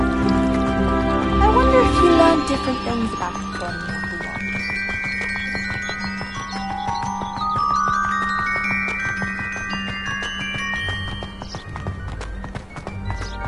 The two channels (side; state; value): both; identical; correlation 1.00